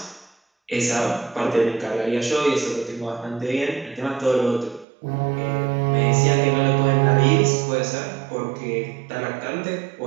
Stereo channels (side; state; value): left; drops out; at 4.9 s